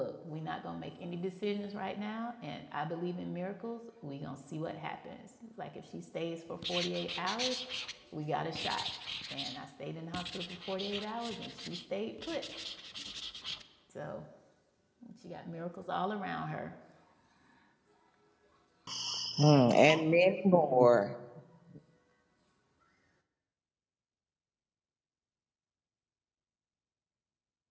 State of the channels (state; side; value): identical; both; correlation 1.00